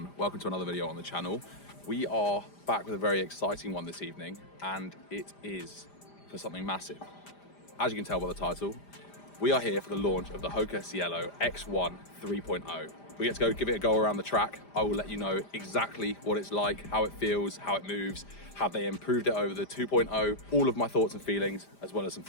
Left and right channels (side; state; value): right; late; 5.0 ms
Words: Welcome to another video on the channel. We are back with a very exciting one this evening, and it is for something massive. As you can tell by the title, we are here for the launch of the HOKA Cielo X1 3.0. We get to go give it a go around the track. I will let you know exactly what it's like, how it feels, how it moves, how they improved it over the 2.0, all of my thoughts and feelings, as well as some